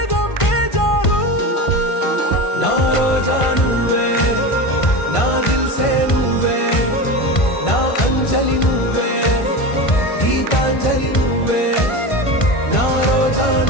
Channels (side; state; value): right; late; 1.5 ms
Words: బేజారు నా రోజా నువ్వే నా దిల్సే నువ్వే నా అంజలి నువ్వే గీతాంజలి నువ్వే నా రోజా